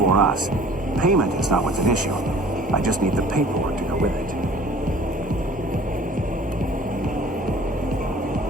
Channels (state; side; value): normal; both; correlation 0.49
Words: us. Payment is not what's an issue. I just need the paperwork to go with it.